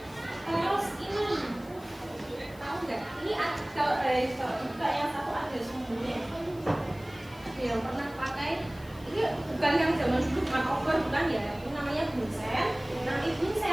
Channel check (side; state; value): left; noise; hiss, 24 dB below the sound